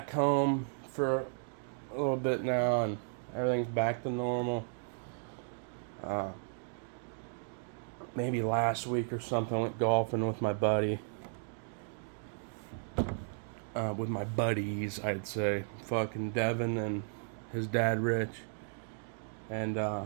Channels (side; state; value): left; silent; digital silence